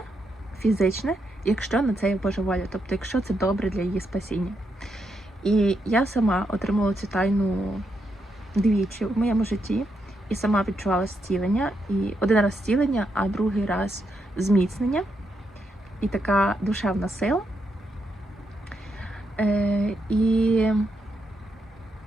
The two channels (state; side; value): normal; both; correlation 0.81